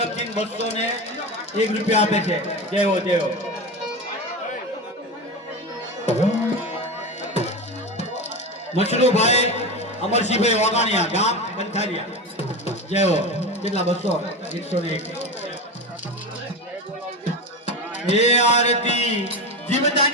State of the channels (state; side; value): normal; both; correlation 0.22